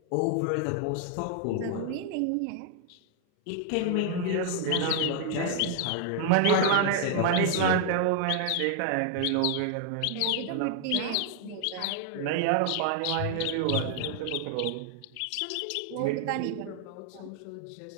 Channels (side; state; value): both; different; correlation 0.00